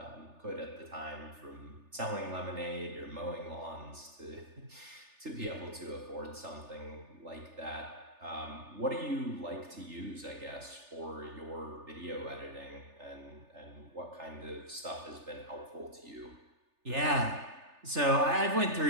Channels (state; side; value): late; left; 3.4 ms